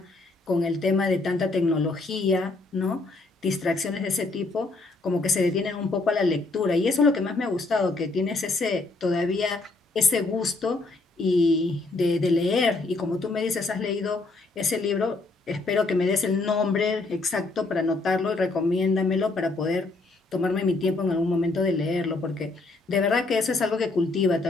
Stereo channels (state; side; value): quieter; right; 3.3 dB